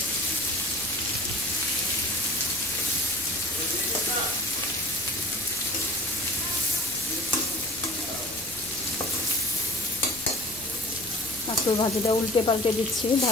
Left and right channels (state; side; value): noise; left; rumble, 22 dB below the sound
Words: কাঁকরোল ভাজিটা উল্টে পাল্টে দিচ্ছি